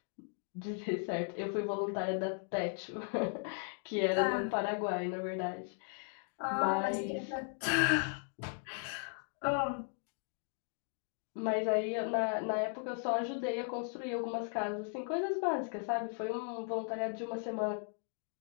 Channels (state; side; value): silent; right; 53 dB below the other